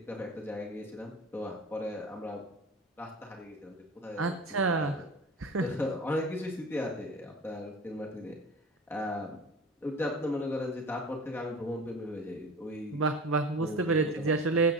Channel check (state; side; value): normal; both; correlation 0.35